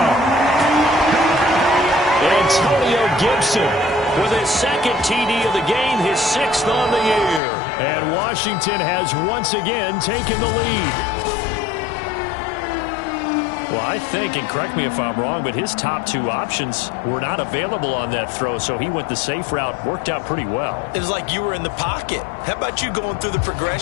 Antonio Gibson with his 2nd TD of the game, his 6th on the year. And Washington has once again taken the lead. Well, I think, and correct me if I'm wrong, but his top 2 options were not available on that throw, so he went the safe route. Worked out pretty well. It was like you were in the pocket. How about you going through the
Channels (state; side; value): drops out; right; at 7.4 s